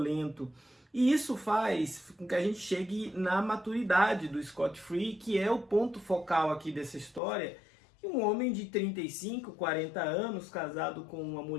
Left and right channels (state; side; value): drops out; right; at 7.2 s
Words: E isso faz com que a gente chegue na maturidade do Scott Free, que é o ponto focal aqui dessa história, que um homem de 35, 40 anos, casado com uma